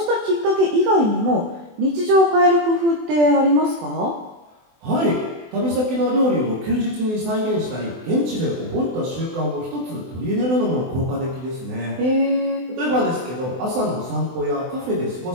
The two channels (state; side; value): late; left; 24 ms